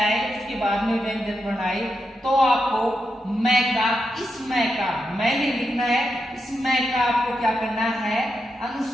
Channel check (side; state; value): both; normal; correlation 0.86